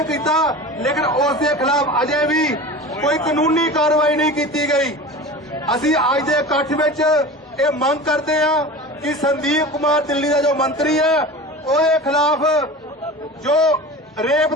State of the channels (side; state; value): both; normal; correlation 0.34